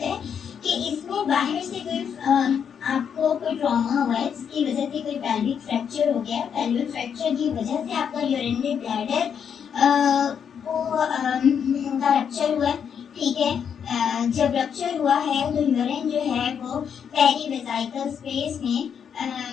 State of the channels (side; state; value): right; quieter; 7.6 dB